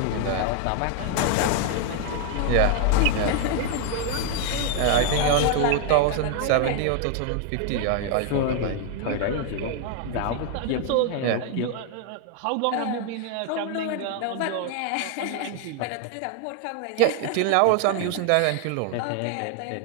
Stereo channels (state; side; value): different; both; correlation 0.01